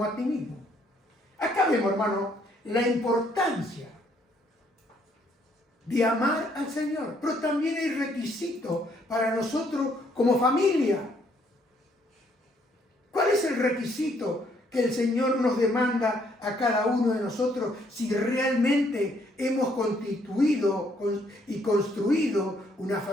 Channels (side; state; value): both; normal; correlation 0.68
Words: a ti mismo. Acá vemos, hermano, la importancia de amar al Señor. Pero también hay requisito para nosotros como familia. ¿Cuál es el requisito que el Señor nos demanda a cada uno de nosotros si realmente hemos constituido y construido una